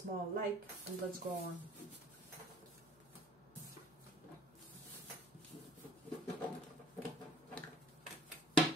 like, and let's go on.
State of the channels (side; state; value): left; noise; hum, 27 dB below the sound